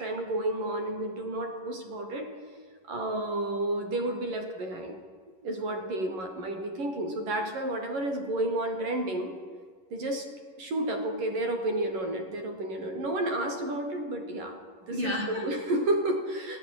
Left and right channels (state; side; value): late; left; 11 ms